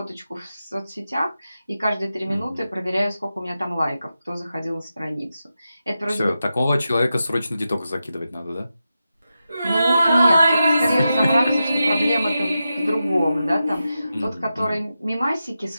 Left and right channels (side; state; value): both; inverted; correlation -0.90